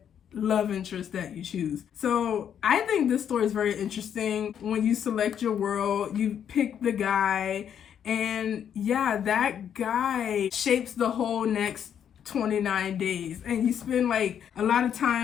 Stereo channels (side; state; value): right; quieter; 8.8 dB